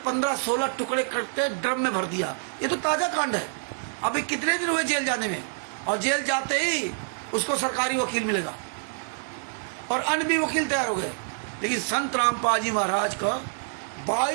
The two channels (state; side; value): silent; left; digital silence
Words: टुकड़े करके ड्रम में भर दिया, ये तो ताजा कांड है। अभी कितने दिन हुए जेल जाने में, और जेल जाते ही उसको सरकारी वकील मिलेगा, और अन्य भी वकील तैयार हो गए। लेकिन संत रामपाल जी महाराज का